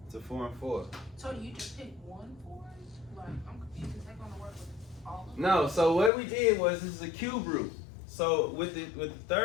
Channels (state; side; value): drops out; right; at 6.1 s